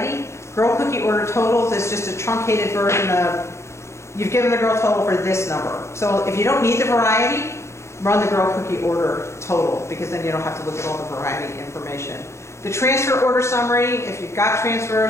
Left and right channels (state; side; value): late; right; 0.13 ms